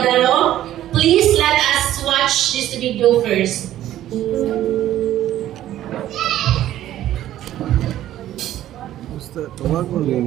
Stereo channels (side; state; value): left; quieter; 12.9 dB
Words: Please let us watch this video first. Tawag mo